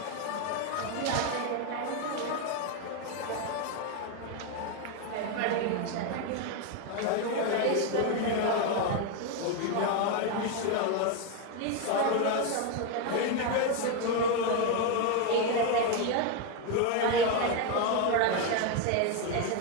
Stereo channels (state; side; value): different; both; correlation 0.02